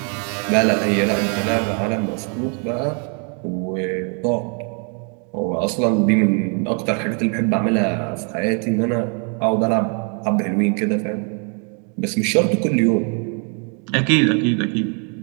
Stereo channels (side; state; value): left; quieter; 39.4 dB